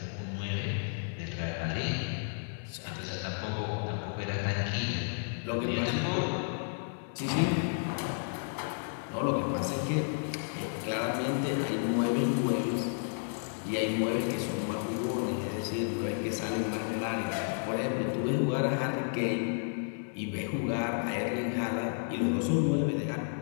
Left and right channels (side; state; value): right; silent; digital silence